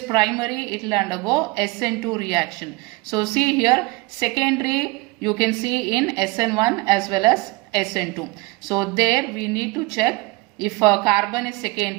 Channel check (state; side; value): quieter; left; 23.2 dB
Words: it will undergo SN2 reaction. So see here, secondary you can see in SN1 as well as SN2. So there we need to check if a carbon is